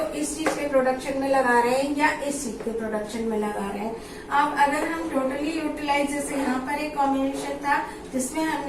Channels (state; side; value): identical; both; correlation 1.00